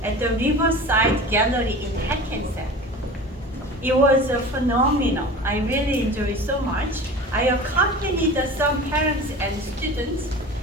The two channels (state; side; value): normal; both; correlation 0.37